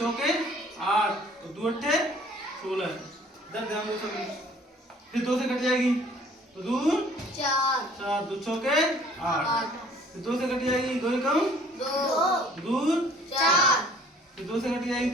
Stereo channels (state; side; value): normal; both; correlation 0.55